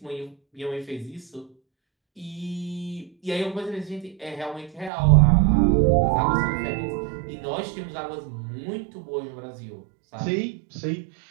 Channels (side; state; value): left; drops out; at 4.9 s